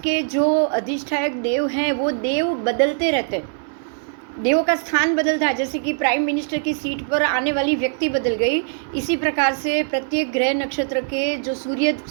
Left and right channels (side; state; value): left; silent; digital silence